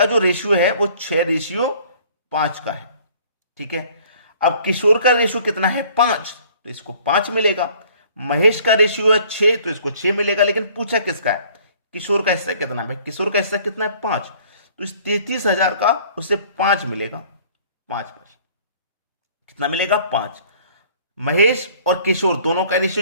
जो रेशियो है वो 6:5 का है। ठीक है, अब किशोर का रेशियो कितना है? 5, तो इसको 5 मिलेगा। महेश का रेशियो है 6, तो इसको 6 मिलेगा। लेकिन पूछा किसका है? किशोर का हिस्सा कितना है? किशोर का हिस्सा कितना है? 5, तो इस 33,000 का उसे 5 मिलेगा। 5 कितना मिलेगा? 5। महेश और किशोर दोनों का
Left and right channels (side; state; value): both; inverted; correlation -0.55